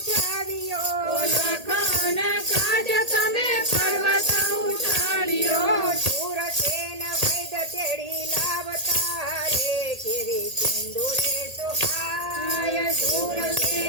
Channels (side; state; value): left; late; 1.8 ms